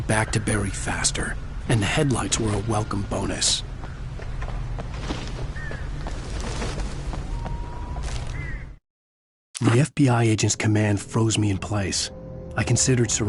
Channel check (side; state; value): both; identical; correlation 1.00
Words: back to Barry faster, and the headlights were a welcome bonus. The FBI agent's command froze me in place. I considered